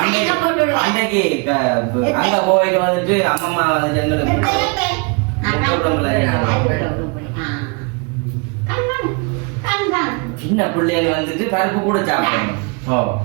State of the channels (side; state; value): left; quieter; 32.6 dB